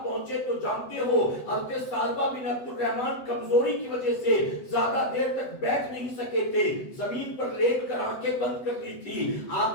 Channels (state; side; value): late; right; 7.9 ms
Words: پہنچے تو جانتے ہو حضرت سالبہ بن عبد الرحمن کمزوری کی وجہ سے زیادہ دیر تک بیٹھ نہیں سکے تھے, زمین پر لیٹ کر آنکھیں بند کر لی تھی.